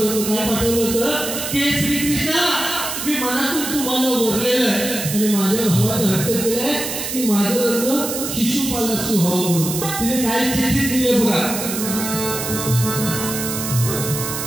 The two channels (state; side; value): noise; right; hiss, 5 dB below the sound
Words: होतं. काय पाठवलं होतं की श्रीकृष्णा, मी मनातून तुम्हाला वरलेलं आहे आणि माझ्या भावाने हट्ट केलाय की माझं लग्न शिशुपालाशी व्हावं म्हणून. तिने काय चिठ्ठी दिली आहे बघा.